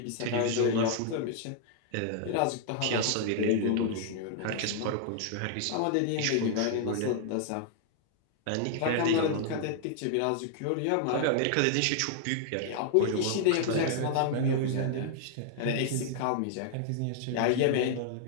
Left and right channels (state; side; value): different; both; correlation -0.01